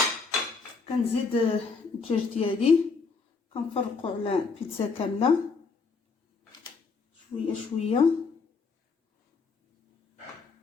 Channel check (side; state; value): right; quieter; 4.7 dB